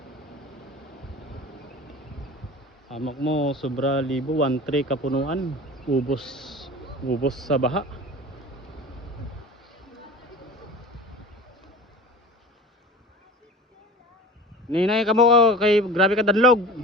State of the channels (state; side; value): normal; both; correlation 0.37